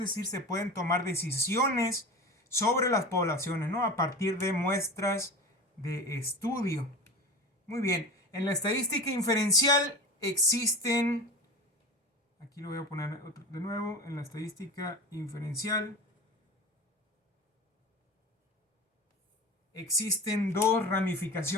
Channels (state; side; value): normal; both; correlation 0.31